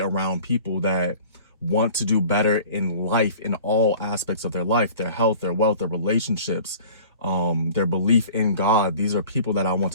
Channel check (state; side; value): inverted; both; correlation -0.46